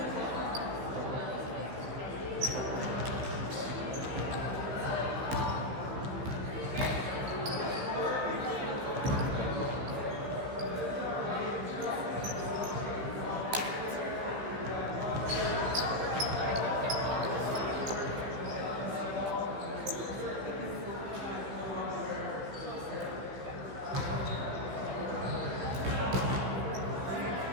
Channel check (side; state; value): left; late; 15 ms